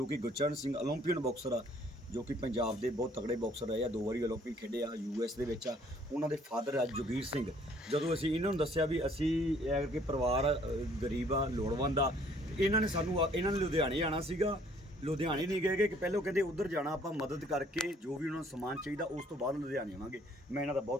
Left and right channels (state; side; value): normal; both; correlation 0.60